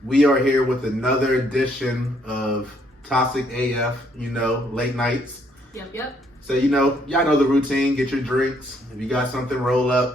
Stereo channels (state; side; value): normal; both; correlation 0.69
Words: We are here with another edition of Toxic AF, late nights. Yep. So, y'all know the routine. Get your drinks. If you got something, roll